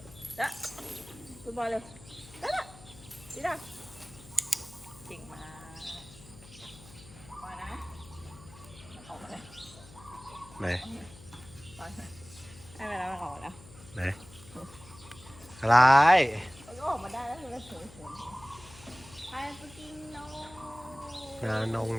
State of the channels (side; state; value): left; noise; hum, 20 dB below the sound